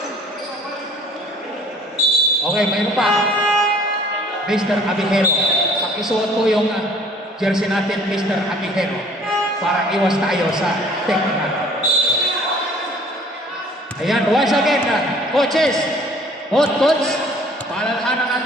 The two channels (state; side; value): normal; both; correlation 0.53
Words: Okay, mayroon pa. Mr. Abihero. Pakisuot po yung jersey natin, Mr. Abihero. Para iwas tayo sa technical. Ayan, once again, coaches, both coach, paalalahanan